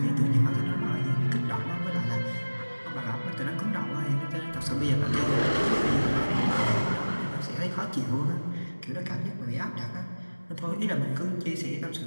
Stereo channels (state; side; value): inverted; both; correlation -1.00